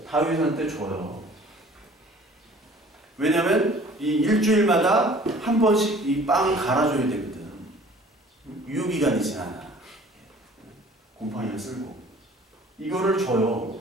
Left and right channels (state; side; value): normal; both; correlation 0.50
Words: 다윗한테 줘요. 왜냐면 이 일주일마다 한 번씩 이 빵을 갈아줘야 되거든. 유효기간이 지나나. 곰팡이를 쓸고. 이거를 줘요.